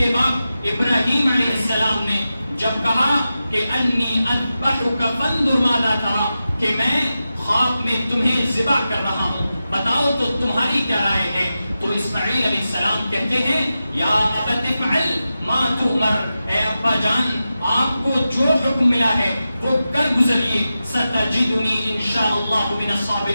باپ ابراہیم علیہ السلام نے جب کہا کہ انی اذبحک فانظر ماذا ترى، کہ میں خواب میں تمہیں ذبح کر رہا ہوں، بتاؤ تو تمہاری کیا رائے ہے؟ تو اسماعیل علیہ السلام کہتے ہیں یا ابت افعل ما تؤمر، اے ابا جان آپ کو جو حکم ملا ہے وہ کر گزریے، ستجدنی انشاءاللہ من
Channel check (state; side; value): inverted; both; correlation -0.92